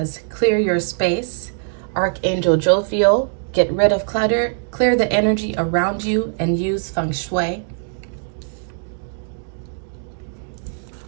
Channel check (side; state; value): left; silent; 65 dB below the other